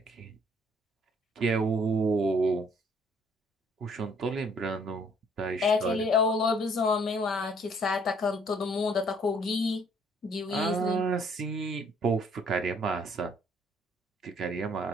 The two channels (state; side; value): normal; both; correlation 0.62